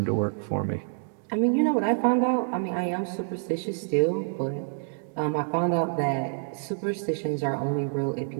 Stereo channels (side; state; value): left; silent; digital silence